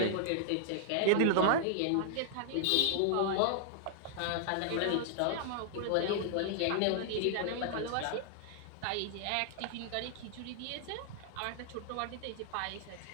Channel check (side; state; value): both; different; correlation 0.00